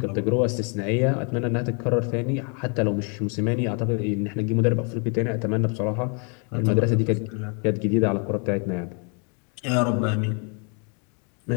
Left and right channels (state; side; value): quieter; right; 37.3 dB